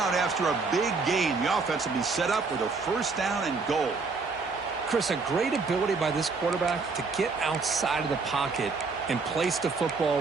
after a big gain. The offense will be set up with a 1st down and goal. Chris, a great ability by this quarterback to get outside of the pocket and place the football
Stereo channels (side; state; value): left; quieter; 4.3 dB